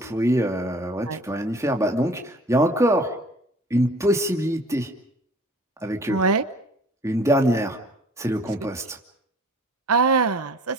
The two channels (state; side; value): normal; both; correlation 0.49